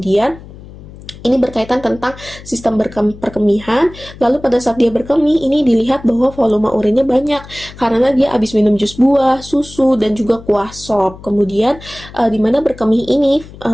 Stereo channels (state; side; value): noise; left; hum, 18 dB below the sound